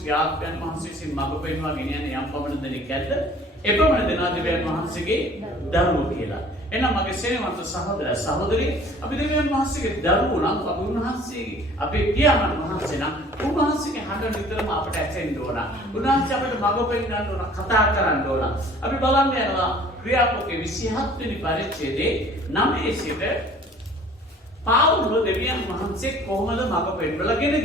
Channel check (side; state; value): both; normal; correlation 0.51